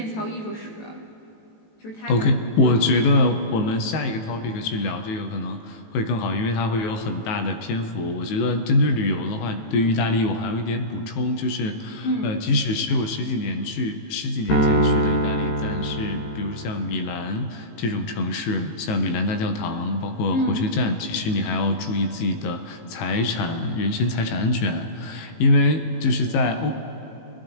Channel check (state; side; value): late; right; 18 ms